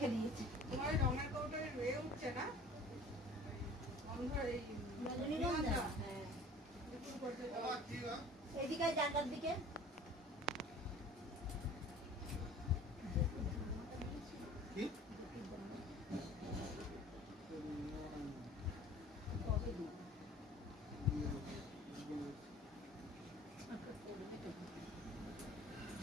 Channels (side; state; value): both; normal; correlation 0.46